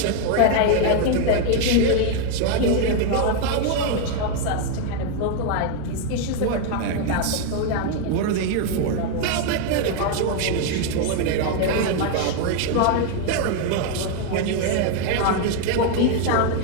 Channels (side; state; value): both; different; correlation 0.01